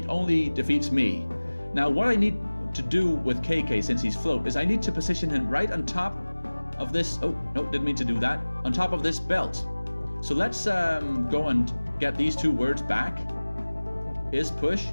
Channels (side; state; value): both; inverted; correlation -1.00